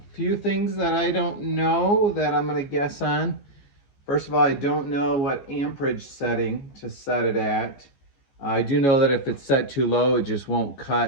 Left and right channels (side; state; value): right; late; 14 ms